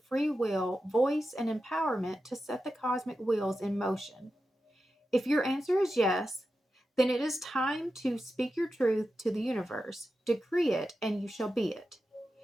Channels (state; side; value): normal; both; correlation 0.91